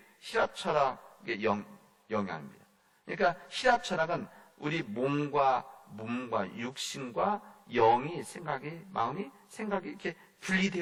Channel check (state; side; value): identical; both; correlation 1.00